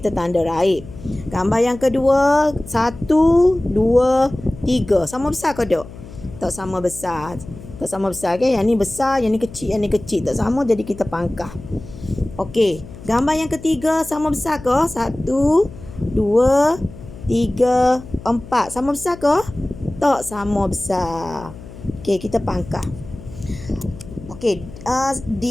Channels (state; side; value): noise; left; hum, 16 dB below the sound